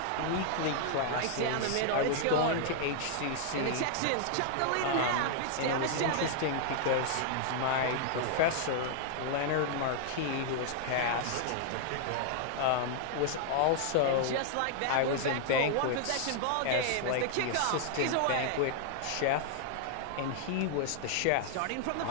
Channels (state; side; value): different; both; correlation -0.01